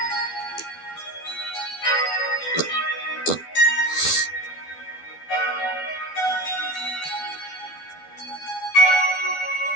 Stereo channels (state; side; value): late; right; 12 ms